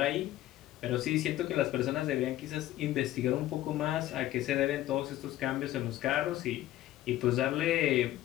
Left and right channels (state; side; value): quieter; right; 14.5 dB